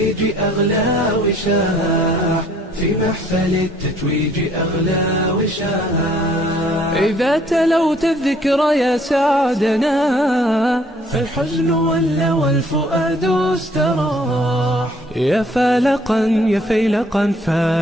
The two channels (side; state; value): both; normal; correlation 0.60